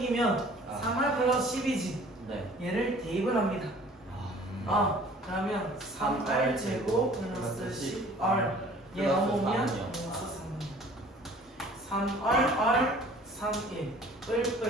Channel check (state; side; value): normal; both; correlation 0.50